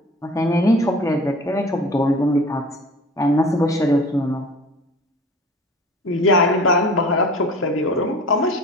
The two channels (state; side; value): normal; both; correlation 0.41